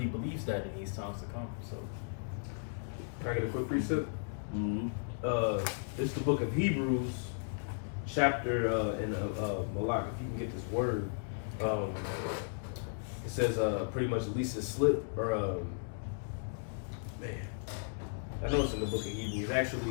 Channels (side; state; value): right; silent; digital silence